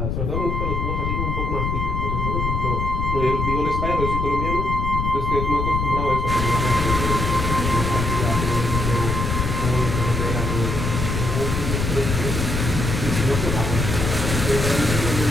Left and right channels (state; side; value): noise; left; rumble, 1 dB below the sound